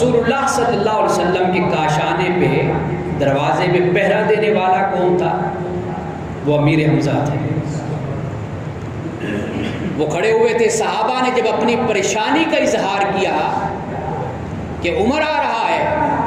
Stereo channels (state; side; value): identical; both; correlation 1.00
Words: اللہ صلی اللہ علیہ وسلم کے کاشانے پہ، دروازے پہ پہرا دینے والا کون تھا؟ وہ امیر حمزہ تھے۔ وہ کھڑے ہوئے تھے۔ صحابہ نے جب اپنی پریشانی کا اظہار کیا کہ عمر آ رہا ہے،